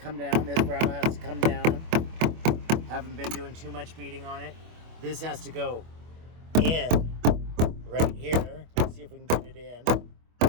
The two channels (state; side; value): late; left; 25 ms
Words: down. This brow has to come down. Haven't been doing too much beating on it. This has to go in right here. Let's see if we can get it in.